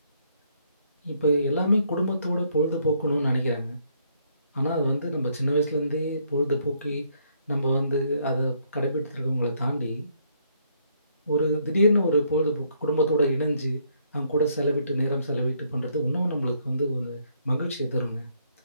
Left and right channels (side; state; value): both; inverted; correlation -0.69